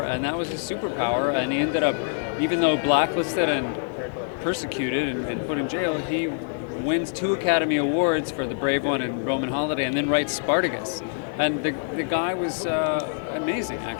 that was his superpower, and he ended up, even though blacklisted and persecuted and put in jail, he wins 2 Academy Awards for The Brave One and Roman Holiday, and then writes Spartacus. And the guy was amazing,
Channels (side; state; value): right; silent; 61 dB below the other